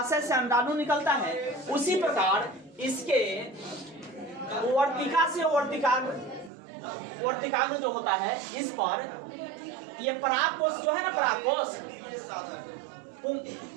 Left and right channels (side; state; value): left; drops out; at 6.5 s